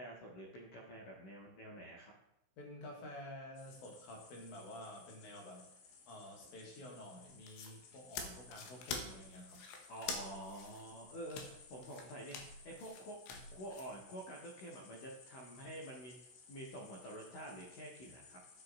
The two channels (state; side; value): late; right; 16 ms